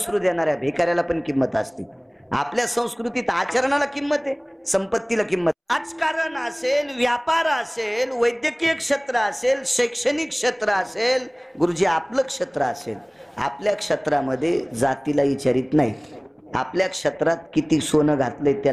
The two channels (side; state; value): both; identical; correlation 1.00